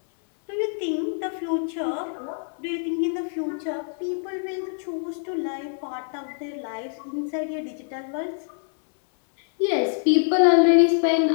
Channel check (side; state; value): right; silent; digital silence